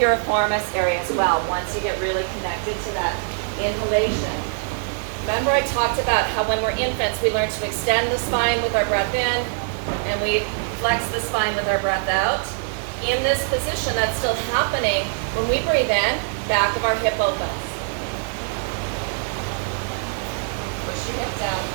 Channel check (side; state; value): left; silent; 63 dB below the other